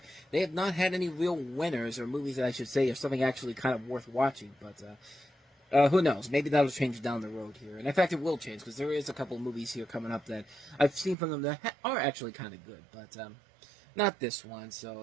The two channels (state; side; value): drops out; left; at 11.2 s